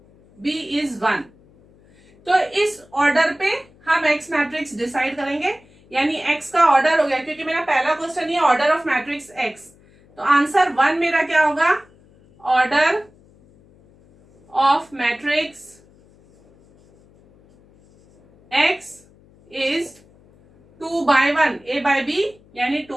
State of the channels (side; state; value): left; noise; hum, 29 dB below the sound